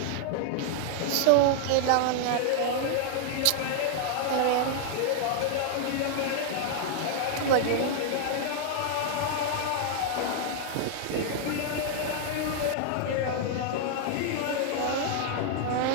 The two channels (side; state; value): both; different; correlation 0.00